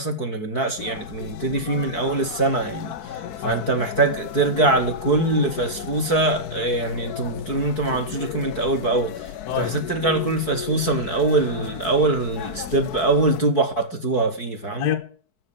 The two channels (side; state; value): right; late; 4.6 ms